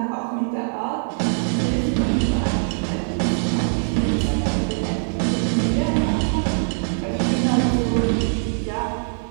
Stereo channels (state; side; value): silent; left; digital silence